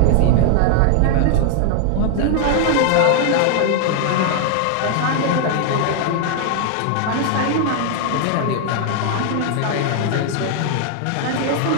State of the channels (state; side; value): different; both; correlation 0.00